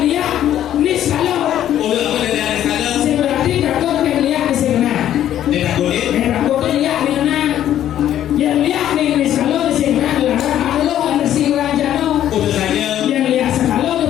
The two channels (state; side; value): quieter; right; 11.4 dB